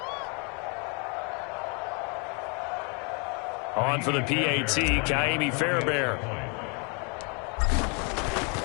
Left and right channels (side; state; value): right; quieter; 34.6 dB